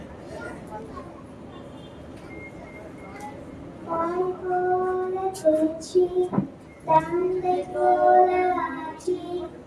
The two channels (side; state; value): both; identical; correlation 1.00